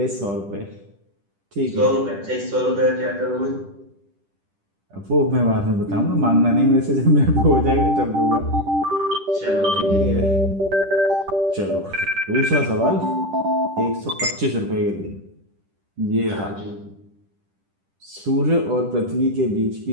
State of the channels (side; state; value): left; late; 10 ms